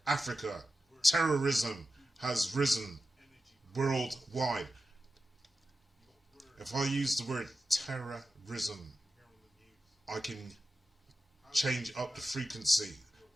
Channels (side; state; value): both; normal; correlation 0.92